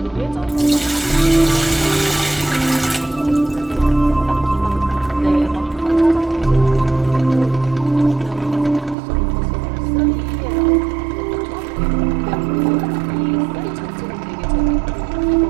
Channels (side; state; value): left; drops out; at 9.0 s